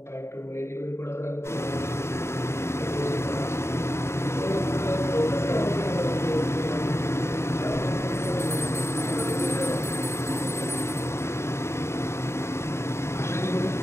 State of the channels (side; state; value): right; late; 0.13 ms